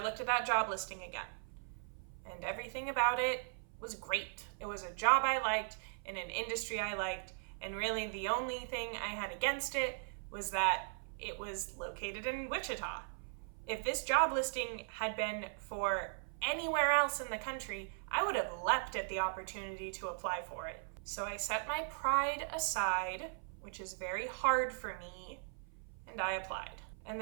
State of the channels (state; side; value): silent; left; 52 dB below the other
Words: looked at that job listing again, and everything about it was great. It was a job I liked in an industry I liked, and really the only thing I had against it was that it was located in Wichita. If this job listing had been for anywhere else in the country, I would have leapt at the opportunity to apply for it. So I set my pride aside, which is very hard for me, and I applied. And